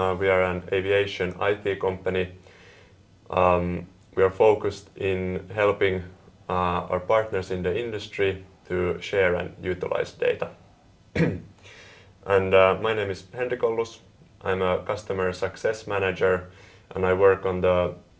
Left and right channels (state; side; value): identical; both; correlation 1.00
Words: are an aviation IT company. We are focused in helping our partners in the industry to share and utilize data. And my name is Henrik Ollus. I'm a customer success manager and I work on the